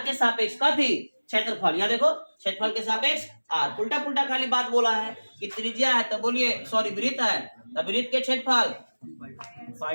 के सापेक्ष का थी क्षेत्रफल, यहाँ देखो क्षेत्रफल के सापेक्ष आर, उल्टा पुल्टा खाली बात बोला है कि त्रिज्या है तो बोलिए सॉरी वृत्त है तो वृत्त के क्षेत्रफल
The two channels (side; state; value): both; inverted; correlation -1.00